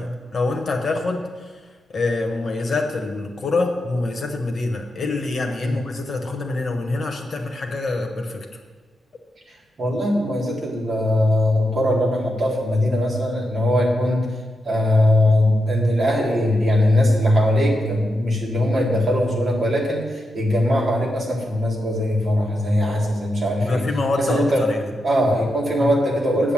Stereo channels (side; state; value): both; normal; correlation 0.86